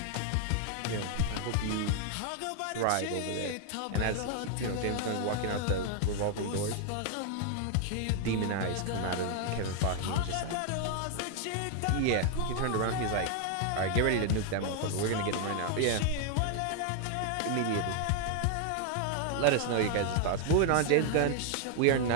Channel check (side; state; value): both; different; correlation 0.00